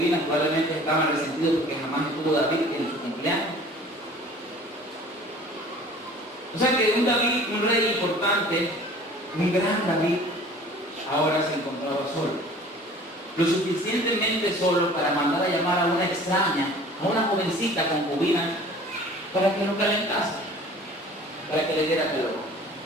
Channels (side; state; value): both; normal; correlation 0.47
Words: probablemente estaban resentidos porque jamás estuvo David en su cumpleaños. O sea que un David, un rey importante, un gran David, ahora se encontraba solo. Lo suficientemente solo para mandar a llamar a una extraña, a una jovencita concubina, para que lo calentase, para que le diera calor.